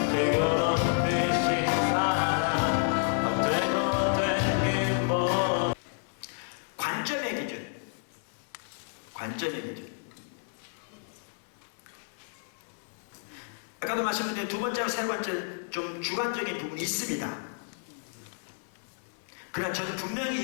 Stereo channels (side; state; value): right; silent; digital silence